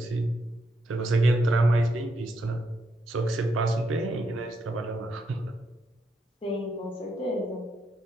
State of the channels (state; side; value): normal; both; correlation 0.80